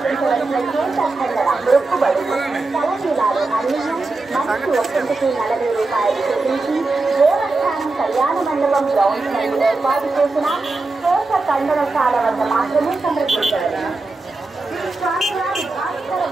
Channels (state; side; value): quieter; left; 3.4 dB